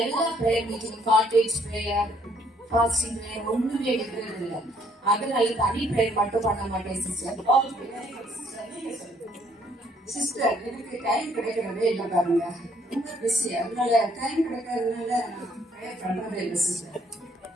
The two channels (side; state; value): both; normal; correlation 0.65